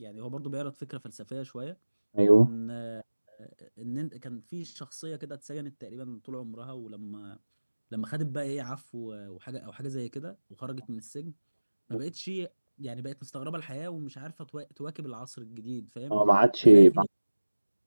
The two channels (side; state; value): both; inverted; correlation -1.00